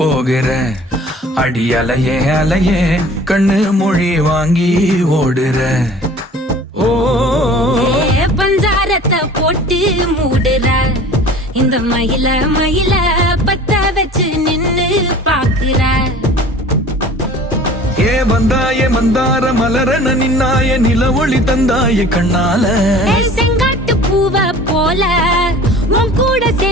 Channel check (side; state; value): both; normal; correlation 0.45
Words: அடி அலையே அலையே கண்ணு மொழி வாங்கி ஓடுற. ஓ பஞ்சாரத்தை போட்டு மூடுற இந்த மயில மயில பத்த வச்சு நின்னு பாக்குற. ஏ வந்தாய மந்தார மலரன நின்னாய நில ஒளி தந்தாய கண்ணால. செங்காட்டு பூவ போல உன் கூட